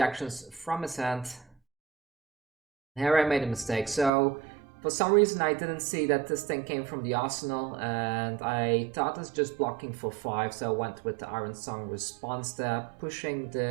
from his hand. Here I made a mistake. So for some reason I didn't see that this thing came from the arsenal, and I thought it's just blocking for 5, so I went with the Iron Song response there, pushing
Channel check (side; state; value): left; drops out; at 4.1 s